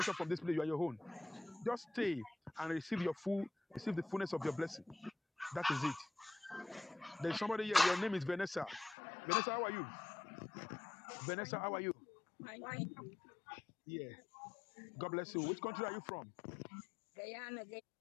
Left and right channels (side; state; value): right; drops out; at 9.0 s